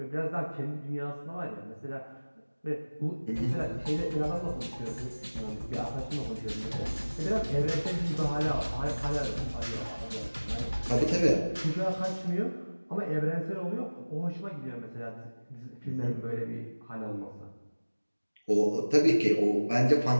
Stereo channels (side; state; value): both; inverted; correlation -1.00